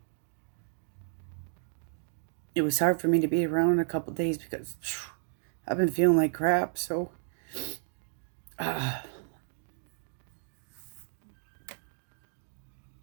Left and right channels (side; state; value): left; silent; digital silence